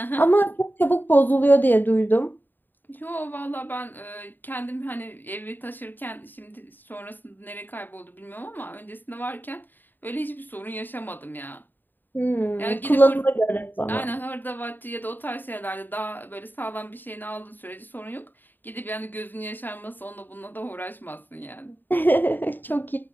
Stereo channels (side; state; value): right; late; 0.091 ms